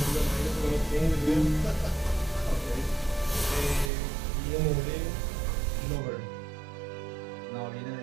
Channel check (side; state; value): left; drops out; at 3.9 s